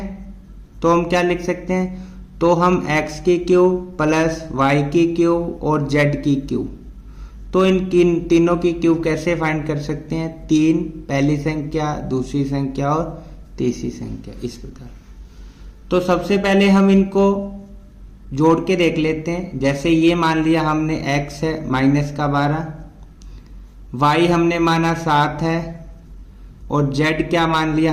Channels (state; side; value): identical; both; correlation 1.00